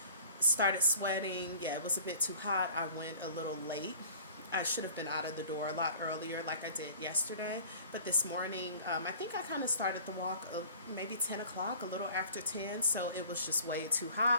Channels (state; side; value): inverted; both; correlation -0.47